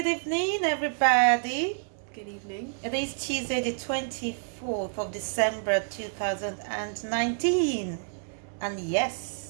evening, everybody. Good evening. It is Tuesday, the 24th of December 2019. And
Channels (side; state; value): left; silent; digital silence